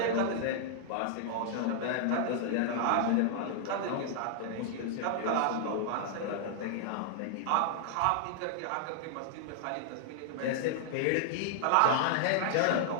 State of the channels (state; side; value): different; both; correlation -0.01